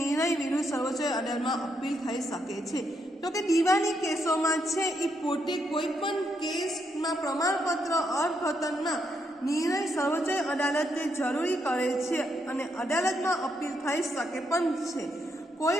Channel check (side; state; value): both; normal; correlation 0.78